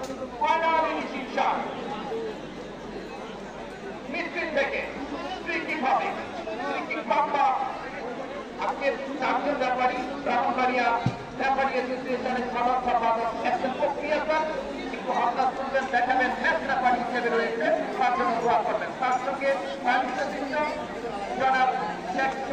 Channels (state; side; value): identical; both; correlation 1.00